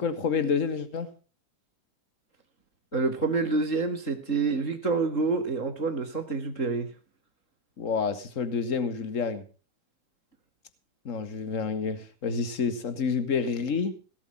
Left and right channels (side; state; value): right; late; 3.7 ms